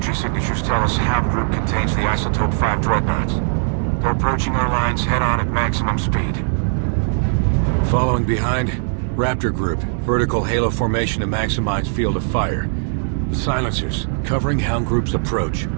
signatures tell us Hound group contains the Isotope 5 dreadnoughts. They're approaching our lines head-on at maximum speed. Following behind, Raptor Group, vertical halo formation to maximize field of fire. The silencers, covering Hound Group's approach.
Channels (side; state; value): left; silent; digital silence